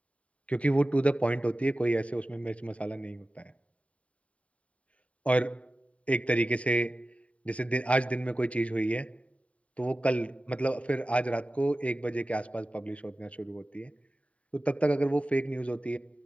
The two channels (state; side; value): late; right; 0.065 ms